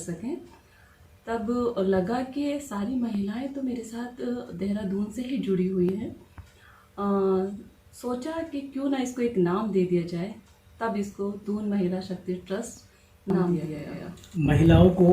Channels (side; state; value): both; identical; correlation 1.00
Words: तब लगा कि सारी महिलाएं तो मेरे साथ देहरादून से ही जुड़ी हुई हैं। सोचा कि क्यों ना इसको एक नाम दे दिया जाए, तब इसको दून महिला शक्ति ट्रस्ट नाम दिया गया। महिलाओं को